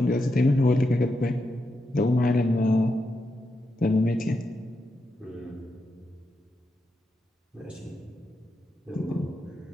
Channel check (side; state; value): both; normal; correlation 0.85